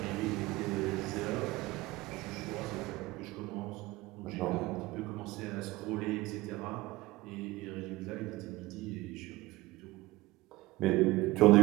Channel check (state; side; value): quieter; left; 19.2 dB